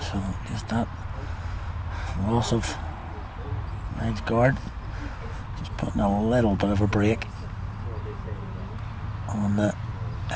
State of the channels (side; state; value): both; identical; correlation 1.00